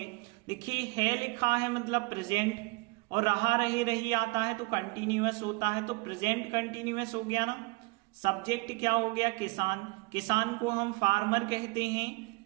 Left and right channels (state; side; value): quieter; left; 27.2 dB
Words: देखिए है लिखा है मतलब प्रेजेंट, और रहा रहे रही आता है तो कंटिन्यूअस होता है, तो प्रेजेंट कंटिन्यूअस हो गया ना। सब्जेक्ट क्या हो गया, किसान। किसान को हम फार्मर कहते हैं,